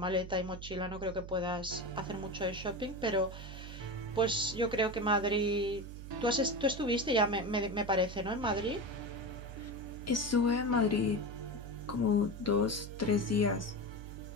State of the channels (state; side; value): noise; right; hum, 11 dB below the sound